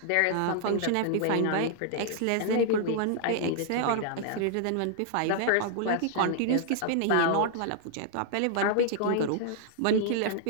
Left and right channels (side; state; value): both; different; correlation -0.01